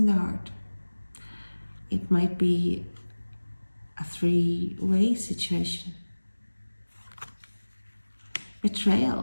the heart. It might be a three-way situation.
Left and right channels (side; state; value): both; inverted; correlation -1.00